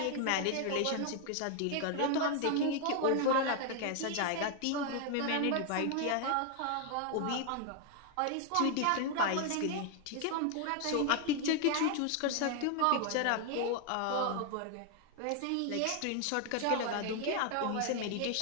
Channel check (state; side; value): different; both; correlation 0.00